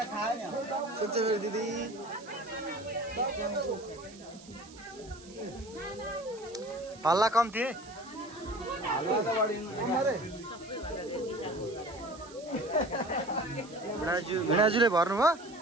दिदी हल्ला कम थिए भिणाजुले भर्नुभयो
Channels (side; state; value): right; noise; hiss, 20 dB below the sound